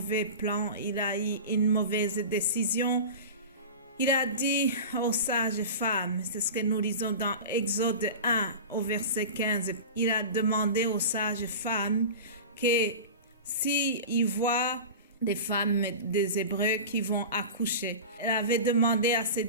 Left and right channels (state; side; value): inverted; both; correlation -0.30